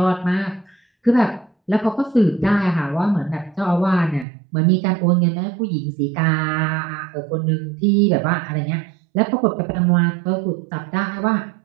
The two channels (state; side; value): drops out; left; at 4.2 s